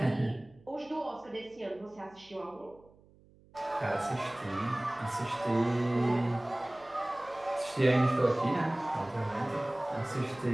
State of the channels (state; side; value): noise; right; hum, 27 dB below the sound